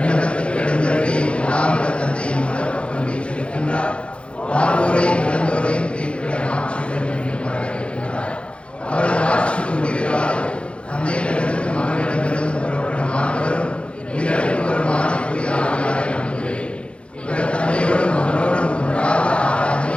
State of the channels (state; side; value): late; right; 0.059 ms